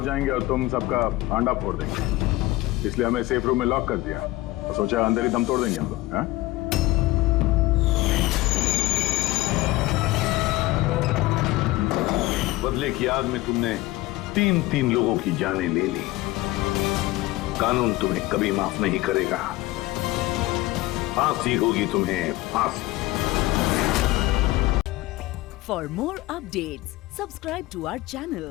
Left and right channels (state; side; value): quieter; right; 18.5 dB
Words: जाएंगे और तुम सबका आंडा फोड़ देंगे, इसलिए हमें सेफ रूम में लॉक कर दिया और सोचा अंदर ही दम तोड़ देंगे हम लोग। हाँ? बदले की आग में तुमने तीन लोगों की जानें ले ली। कानून तुम्हें कभी माफ नहीं करेगा, फांसी होगी तुम्हें, फांसी। For more updates, subscribe to our channel,